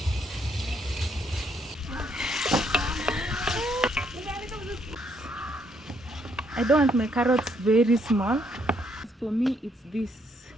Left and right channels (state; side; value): normal; both; correlation 0.72